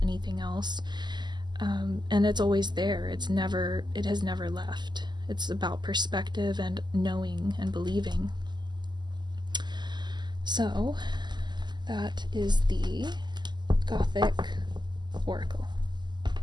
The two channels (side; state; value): left; late; 0.21 ms